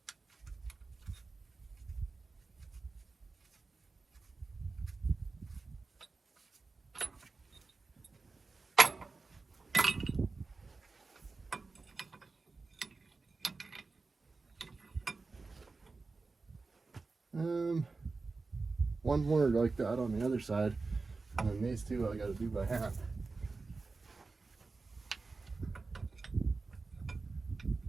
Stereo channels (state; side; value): quieter; left; 4.0 dB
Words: One more like that on the other side, and then these two I got to do by hand.